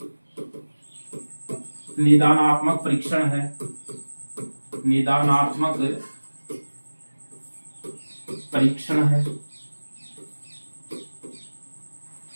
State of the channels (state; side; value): inverted; both; correlation -1.00